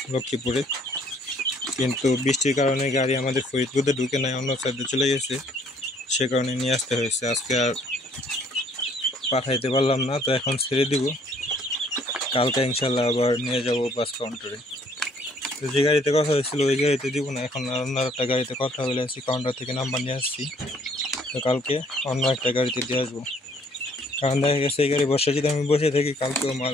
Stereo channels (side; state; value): both; normal; correlation 0.62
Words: লক্ষ্মীপুরে, কিন্তু বৃষ্টির কারণে গাড়ি আমাদের ফরিদপুরে ঢুকে নাই, অন্য সাইডে চলে গেছে। সে কারণে নিয়ে আসতে হয়েছে। আজকে আর পাঠাইতে পারলাম না, তো এখন ছেড়ে দিব। কালকে ইনশাল্লাহ আবার নিয়ে যাব বাস কাউন্টারে। তো যে গাড়িতে কথা হয়েছিল ওই গাড়িতে দিব না, এখন অন্য একটা গাড়িতে কথা বলে আসছি, কাউন্টার থেকে নাম্বার নিয়ে আসছি। তো কালকে অন্য একটা গাড়িতে দিয়ে আসবো, কারণ দেখা গেছে এই গাড়ি বসে যদি আমি বসে থাকি কালকেও